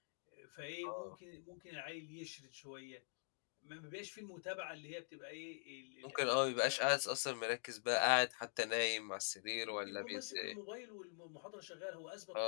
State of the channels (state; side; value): silent; right; digital silence